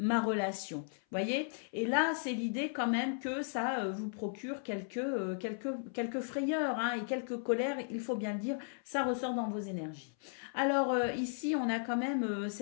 relation. Voyez? Et là, c'est l'idée quand même que ça vous procure quelques frayeurs hein, et quelques colères, il faut bien le dire, ça ressort dans vos énergies. Alors ici, on a quand même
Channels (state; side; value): silent; right; 54 dB below the other